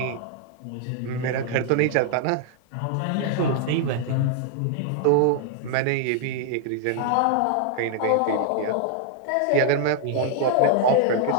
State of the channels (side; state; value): both; different; correlation 0.00